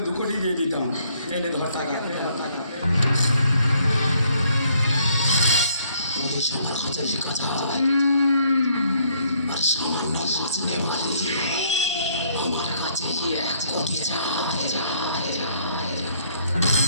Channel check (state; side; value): inverted; both; correlation -0.66